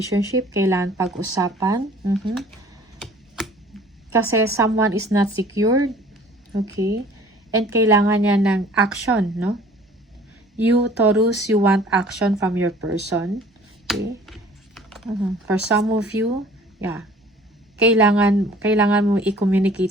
Kailangan pag-usapan. Kasi someone is not secured. Okay. And kailangan niya ng action, no? You, Taurus, you want action from your person. Okay. For some of you, yeah. Kailangan mo i-communicate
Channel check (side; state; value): both; normal; correlation 0.50